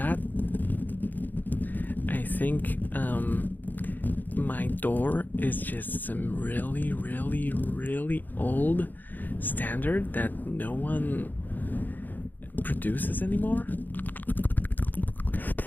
I think my door is just some really, really, really old standard that no one produces anymore.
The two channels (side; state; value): right; late; 0.087 ms